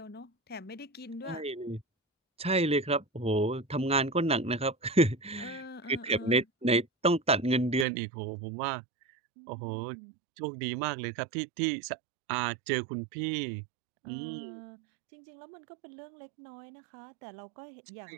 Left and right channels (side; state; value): left; drops out; at 7.9 s